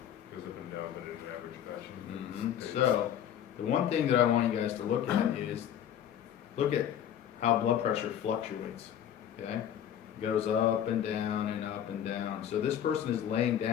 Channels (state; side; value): quieter; right; 10.0 dB